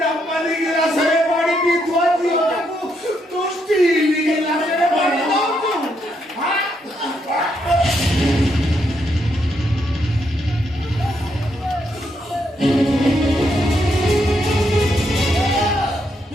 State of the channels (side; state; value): both; normal; correlation 0.77